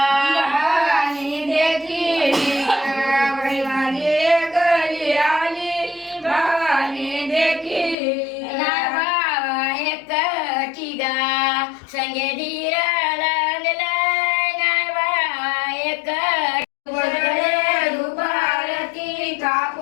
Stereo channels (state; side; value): drops out; right; at 8.0 s